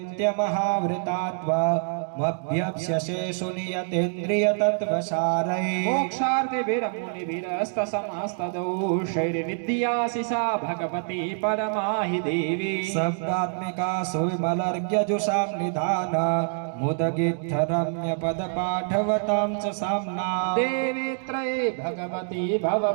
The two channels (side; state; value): left; silent; digital silence